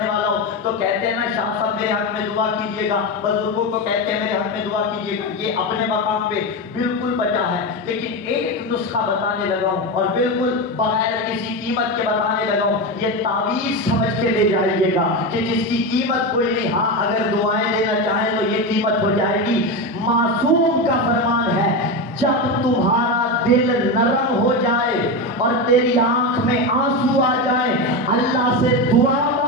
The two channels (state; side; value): normal; both; correlation 0.16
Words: والا ہو تو کہتے ہیں نا شاہ صاحب میرے حق میں دعا کیجئے گا. بزرگوں کو کہتے ہیں میرے حق میں دعا کیجئے گا. یہ اپنے مقام پہ بالکل بچا ہے، لیکن ایک نسخہ بتانے لگا ہوں اور بالکل بغیر کسی قیمت کے بتانے لگا ہوں. یہ تعویذ سمجھ کے لے جائیے گا کہ جس کی قیمت کوئی نہیں. ہاں اگر دعائیں دینا چاہیں تو یہ قیمت ہو جائے گی. معصوم کا فرمان ہے جب تمہارا دل نرم ہو جائے اور تیری آنکھ میں آنسو آ جائے، اللہ سے دعا